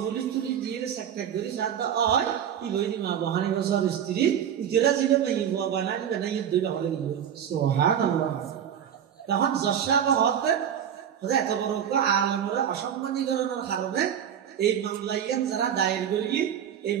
পুলিশ তুই দিয়ে সেক্রেটারি গরি সাদা হয় ই গইদি মা বহানি বছর স্ত্রী ইজরা জিবে মেই ও বানাই বানাই দুইটা হলে গিয়ে সুবহানাল্লাহ তখন জশাবা হতে হতে এত বড় আলমরে অসম্মানীকরণের কারণে এই মামলাইয়াত যারা দায়ের করি এই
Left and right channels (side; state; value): left; quieter; 9.1 dB